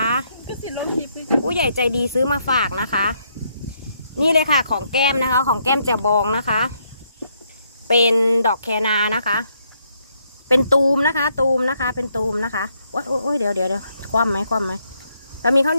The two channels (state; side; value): inverted; both; correlation -0.74